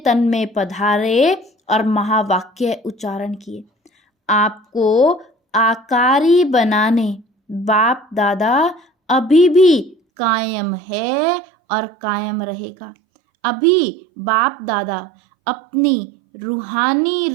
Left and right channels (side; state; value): left; drops out; at 10.0 s